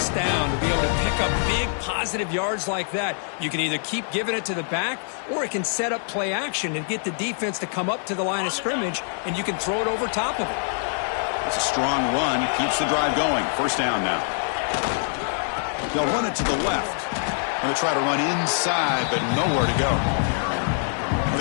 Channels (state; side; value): silent; right; digital silence